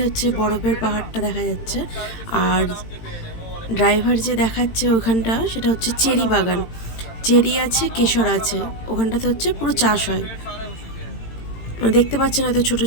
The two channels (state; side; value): late; right; 18 ms